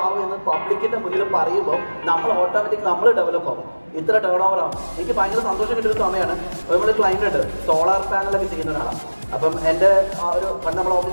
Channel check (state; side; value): inverted; both; correlation -1.00